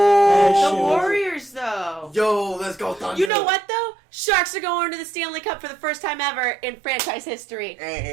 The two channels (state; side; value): drops out; left; at 3.3 s